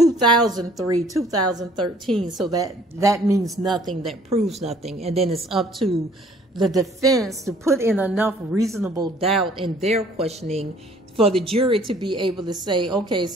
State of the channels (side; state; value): both; normal; correlation 0.57